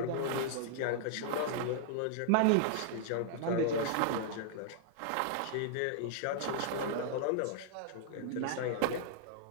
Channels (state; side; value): different; both; correlation -0.01